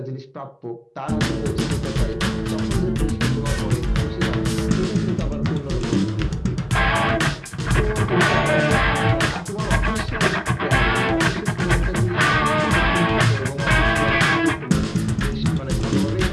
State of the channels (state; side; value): identical; both; correlation 1.00